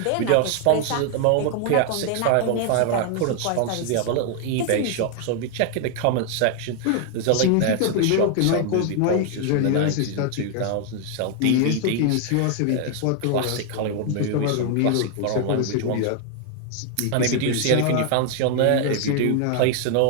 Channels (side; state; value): both; different; correlation 0.00